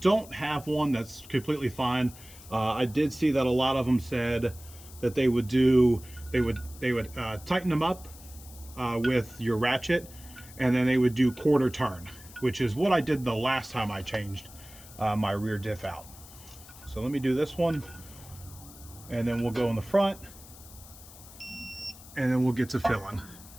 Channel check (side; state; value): left; noise; hiss, 19 dB below the sound